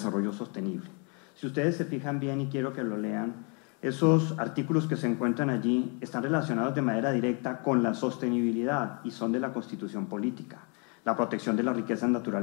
sostenible. Si ustedes se fijan bien y quiero que lo lean, esos artículos que se encuentran allí están relacionados de manera directa con la sostenibilidad y son de la Constitución Política. La protección de las riquezas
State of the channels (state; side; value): quieter; right; 35.5 dB